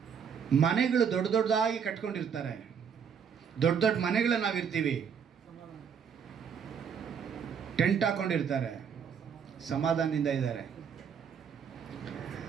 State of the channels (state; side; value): quieter; left; 7.2 dB